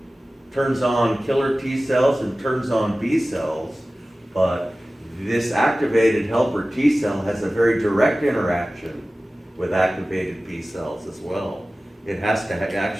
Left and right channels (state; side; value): normal; both; correlation 0.96